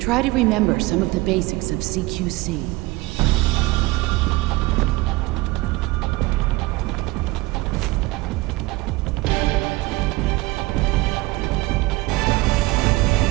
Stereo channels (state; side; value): quieter; left; 21.1 dB